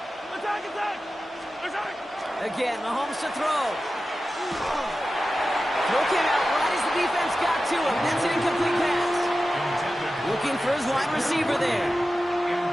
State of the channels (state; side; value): normal; both; correlation 0.93